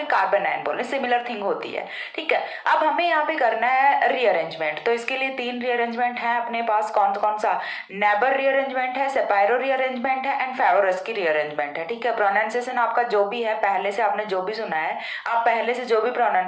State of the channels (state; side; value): identical; both; correlation 1.00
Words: कार्बन एनायन बोले, सिमिलर थिंग होती है, ठीक है। अब हमें यहाँ पे करना है रीअरेंजमेंट, तो इसके लिए 3 रीअरेंजमेंट है अपने पास। कौन कौन सा? नेबर रीअरेंजमेंट है, सेपायरो रीअरेंजमेंट है एंड फेवरस की रीअरेंजमेंट है, ठीक है। प्रोनाउंसिएशन आपका जो भी है, पहले से आपने जो भी सुना है, आप पहले से जो भी